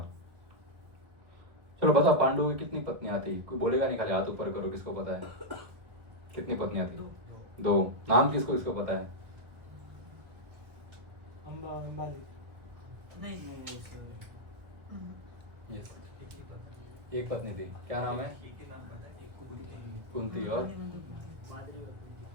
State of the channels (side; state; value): left; late; 1.5 ms